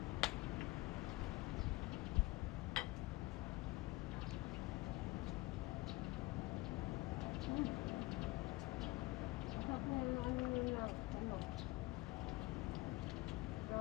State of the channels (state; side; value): quieter; right; 20.4 dB